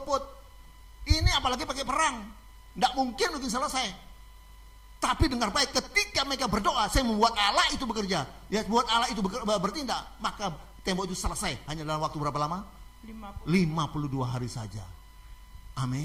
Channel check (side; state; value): both; identical; correlation 1.00